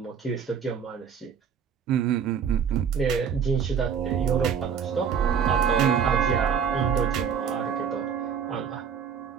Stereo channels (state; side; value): quieter; left; 7.2 dB